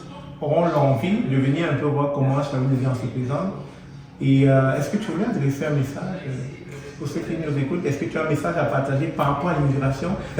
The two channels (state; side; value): identical; both; correlation 1.00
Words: auront l'envie de venir un peu voir comment Shawinigan se présente. Et est-ce que tu voulais adresser un message pour ceux qui nous écoutent? Est-ce que tu as un message à partager par rapport à l'immigration?